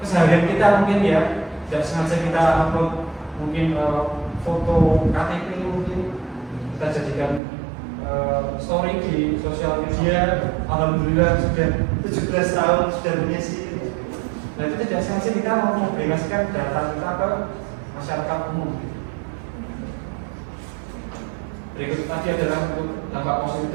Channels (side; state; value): left; drops out; at 7.4 s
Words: keseharian kita mungkin ya, tidak sengaja kita upload mungkin foto KTP mungkin kita jadikan story di sosial media. Alhamdulillah sudah 17 tahun sudah punya sih. Nah, itu tidak sengaja kita mau mempublikasikan data kita ke masyarakat umum. Berikut tadi adalah untuk dampak positif